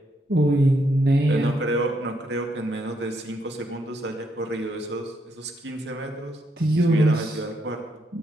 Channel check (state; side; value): normal; both; correlation 0.76